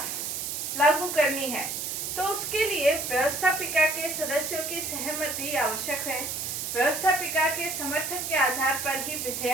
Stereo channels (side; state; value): right; noise; hiss, 3 dB below the sound